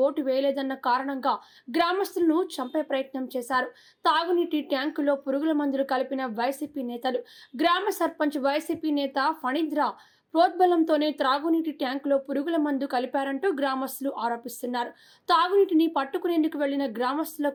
ఓటు వేయలేదన్న కారణంగా గ్రామస్తులను చంపే ప్రయత్నం చేశారు. తాగునీటి ట్యాంకులో పురుగుల మందులు కలిపిన వైసీపీ నేతలు. గ్రామ సర్పంచ్ వైసీపీ నేత ఫణీంద్ర ప్రోద్బలంతోనే త్రాగునీటి ట్యాంకులో పురుగుల మందు కలిపారంటూ గ్రామస్తులు ఆరోపిస్తున్నారు. తాగునీటిని పట్టుకునేందుకు వెళ్లిన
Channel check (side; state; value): both; identical; correlation 1.00